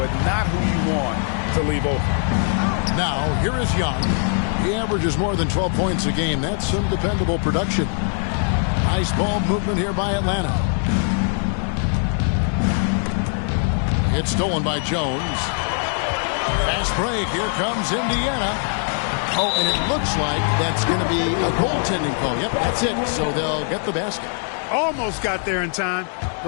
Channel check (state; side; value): silent; right; 59 dB below the other